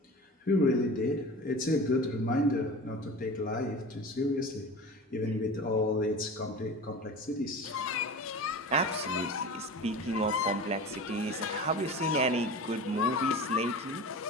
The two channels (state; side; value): normal; both; correlation 0.34